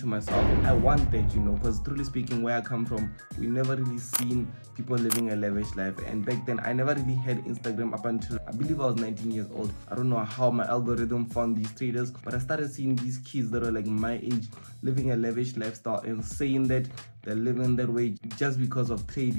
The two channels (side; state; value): both; inverted; correlation -1.00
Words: myself, I want that, because truly speaking, where I come from, we never really seen people living a lavish life. And back then, I never really had Instagram up until I believe I was 19 years old. I don't know how my algorithm found these traders, but I started seeing these kids that were like my age living a lavish lifestyle and saying that they're living that way just because of